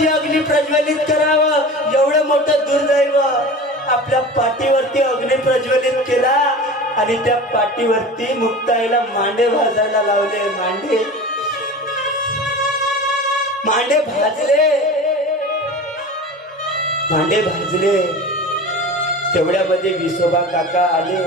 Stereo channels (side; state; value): both; normal; correlation 0.34